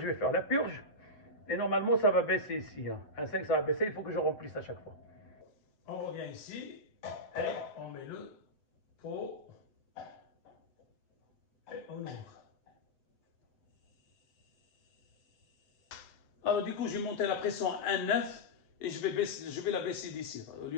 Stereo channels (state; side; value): late; right; 8.0 ms